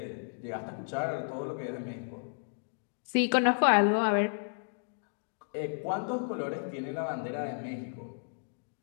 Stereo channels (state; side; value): silent; right; digital silence